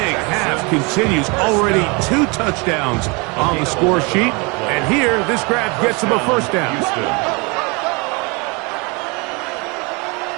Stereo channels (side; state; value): left; quieter; 29.0 dB